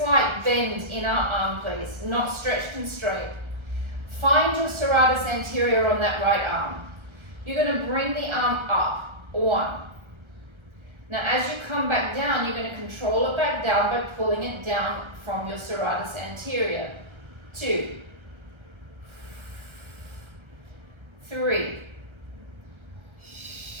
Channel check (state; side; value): late; left; 1.3 ms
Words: bend in our arm, please. Not stretched and straight. Find your serratus anterior on that right arm. You're going to bring the arm up. 1. Now, as you come back down, you're going to control it back down by pulling it down from your serratus anterior. 2. 3.